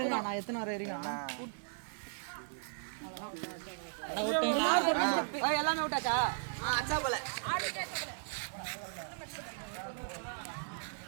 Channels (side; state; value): left; silent; digital silence